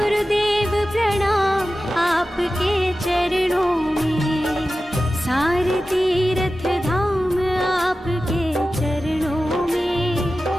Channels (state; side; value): normal; both; correlation 0.94